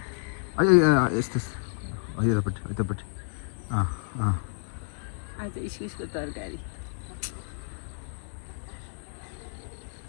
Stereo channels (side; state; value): right; silent; digital silence